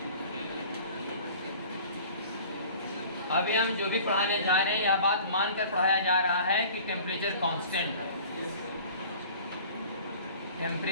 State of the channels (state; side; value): inverted; both; correlation -0.46